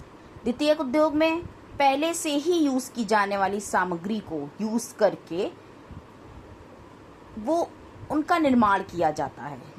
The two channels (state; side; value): identical; both; correlation 1.00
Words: द्वितीयक उद्योग में पहले से ही यूज की जाने वाली सामग्री को यूज करके वो उनका निर्माण किया जाता है।